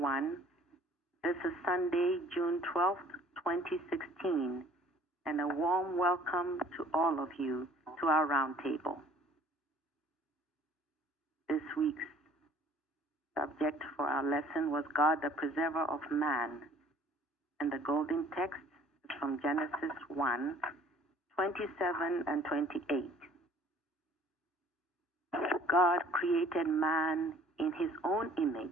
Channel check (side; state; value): both; normal; correlation 0.54